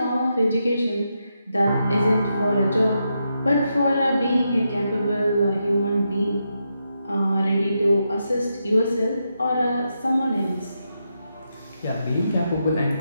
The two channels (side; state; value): both; inverted; correlation -0.84